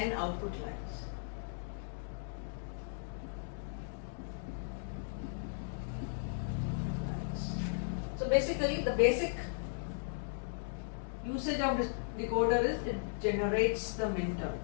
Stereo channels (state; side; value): silent; right; digital silence